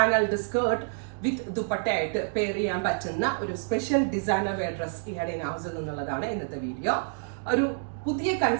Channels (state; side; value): silent; left; digital silence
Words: skirt with ദുപ്പട്ടയായിട്ട് പെയർ ചെയ്യാൻ പറ്റുന്ന ഒരു സ്പെഷ്യൽ ഡിസൈനർ വെയർ ഡ്രസ് ഇഹാഡ് ഇൻ ഹൗസിൽ നിന്നുള്ളതാണ് ഇന്നത്തെ വീഡിയോ. ഒരു പുതിയ